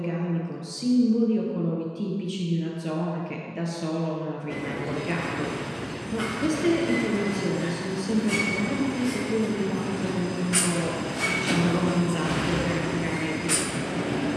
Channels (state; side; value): identical; both; correlation 1.00